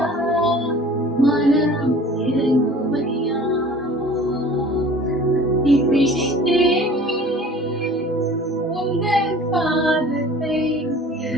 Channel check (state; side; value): normal; both; correlation 0.46